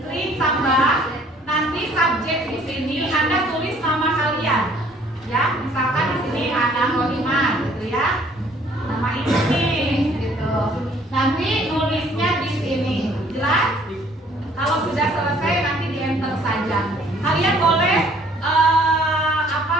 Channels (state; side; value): normal; both; correlation 0.59